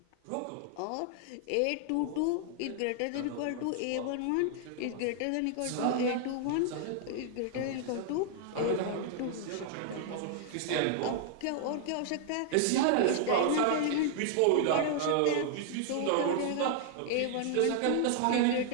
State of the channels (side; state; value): both; different; correlation -0.01